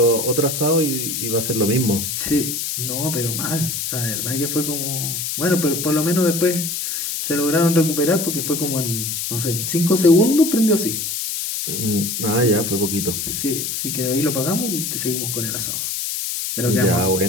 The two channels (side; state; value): left; noise; hiss, 3 dB below the sound